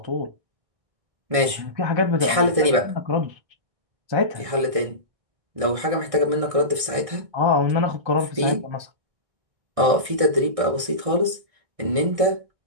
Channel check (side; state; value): left; late; 1.6 ms